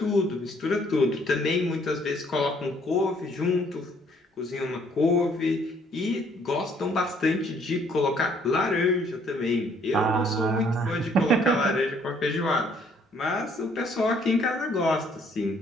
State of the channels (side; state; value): both; normal; correlation 0.64